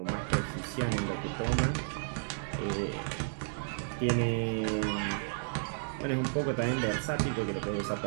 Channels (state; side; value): silent; left; digital silence